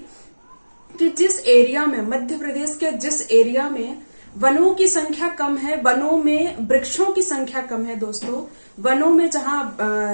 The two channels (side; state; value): both; inverted; correlation -1.00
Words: कि जिस एरिया में, मध्य प्रदेश के जिस एरिया में वनों की संख्या कम है, वनों में वृक्षों की संख्या कम है दोस्तों, वनों में जहां